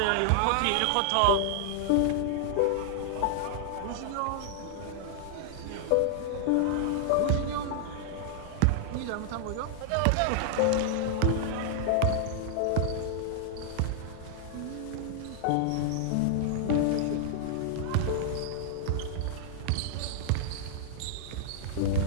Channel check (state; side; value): different; both; correlation -0.01